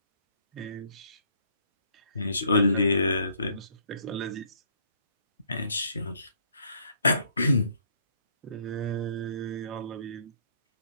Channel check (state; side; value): inverted; both; correlation -0.66